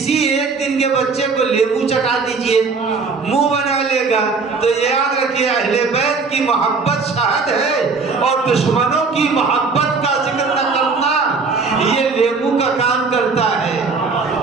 1 دن کے بچے کو لیمو چٹا دیجئے، منہ بنا لے گا۔ تو یاد رکھیے اہل بیت کی محبت شہد ہے، اور دشمنوں کی محبت کا ذکر نہ کرنا یہ لیمو کا کام کرتا ہے۔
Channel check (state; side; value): quieter; left; 4.5 dB